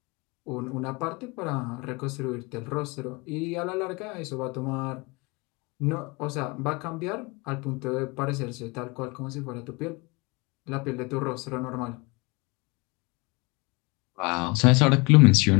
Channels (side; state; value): right; quieter; 27.8 dB